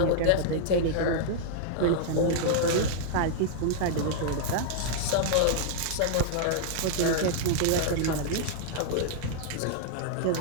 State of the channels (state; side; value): different; both; correlation -0.01